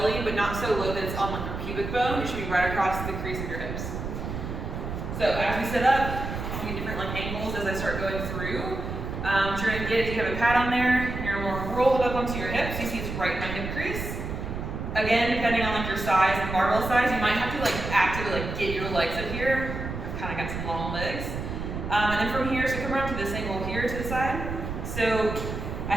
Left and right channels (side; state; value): right; noise; rumble, 6 dB below the sound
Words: but not so low that it's on your pubic bone. It should be right across the crease of your hips. So as we sit up, I'll get different angles as I start going through. What you're going to get, if you have a pad on there, you're going to roll it up onto your hips. You see it's right in my hip crease. Again, depending on your size and barbell size, you might have to actively get your legs up here. I've kind of got some long legs. And then from here, so come around to this angle here to the side. So I